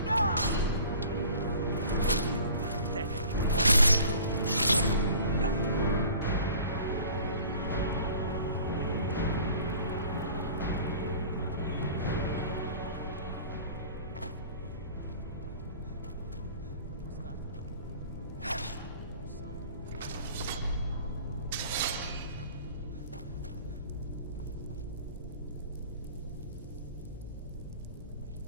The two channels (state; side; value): inverted; both; correlation -0.46